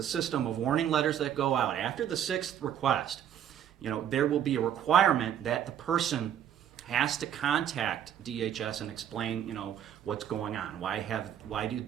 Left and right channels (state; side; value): quieter; left; 9.9 dB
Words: system of warning letters that go out. After the sixth request, there will be a requirement that the person has to contact DHS and explain, what's going on. Why